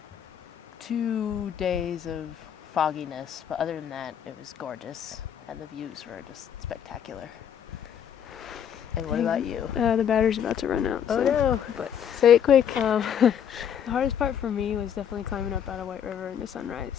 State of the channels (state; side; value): quieter; right; 8.8 dB